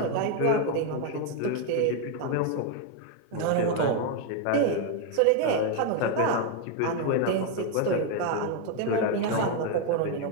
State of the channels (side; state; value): both; different; correlation 0.01